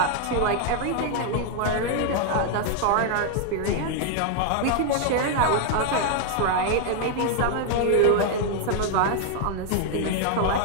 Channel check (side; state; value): both; different; correlation 0.00